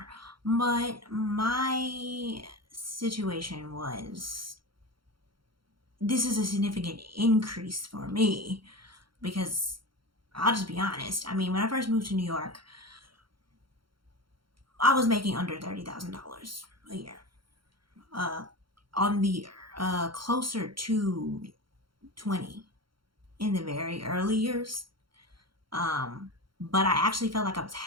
But my situation was this is a significant increase for me because I'll just be honest. I mean, when I first moved to New York, I was making under $30,000 a year. On the closer to 20 in the very early years. But I actually felt like I was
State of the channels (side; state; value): left; late; 0.73 ms